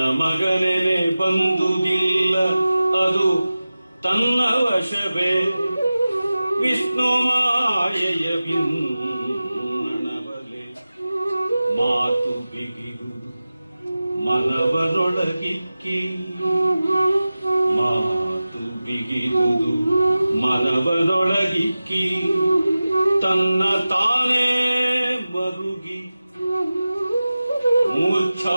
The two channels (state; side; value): inverted; both; correlation -0.96